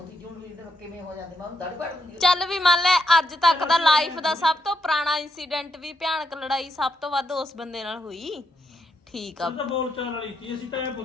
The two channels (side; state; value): both; normal; correlation 0.80